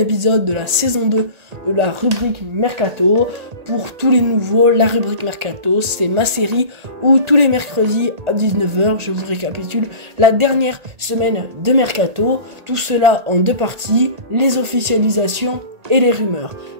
de la saison 2 de la rubrique Mercato. Pour tous les nouveaux, la rubrique Mercato, c'est ma série où tous les mercredis à 19h, je vous récapitule la dernière semaine de Mercato. Tout cela en deux parties, les officialisations et les rumeurs.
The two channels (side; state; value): left; late; 1.8 ms